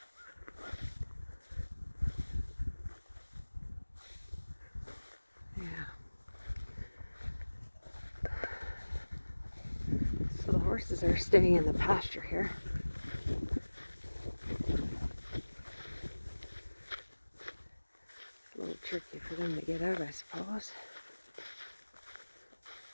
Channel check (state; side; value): inverted; both; correlation -1.00